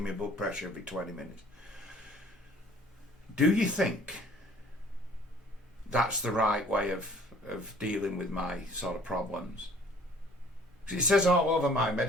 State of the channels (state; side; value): normal; both; correlation 0.54